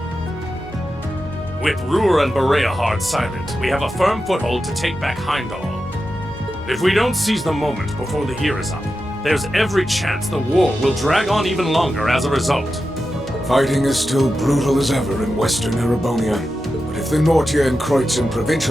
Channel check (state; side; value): normal; both; correlation 0.90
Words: With Ruhr and Bereahard silent, we have a firm foothold to take back Heimdall. If we don't seize the moment before the year is up, there's every chance the war will drag on even longer as a result. Fighting is still brutal as ever in western Erebonia, but if the Nortia and Kreutzen